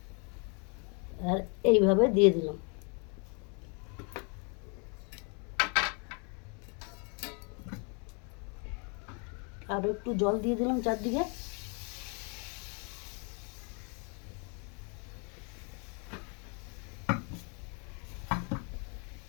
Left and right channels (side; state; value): right; quieter; 35.9 dB